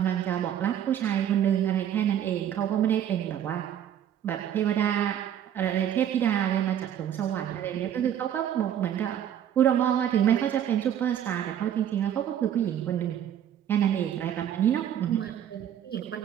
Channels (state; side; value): quieter; left; 10.1 dB